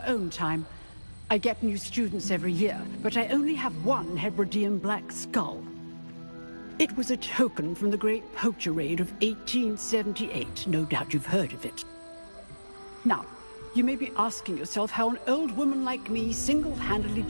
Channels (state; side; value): inverted; both; correlation -1.00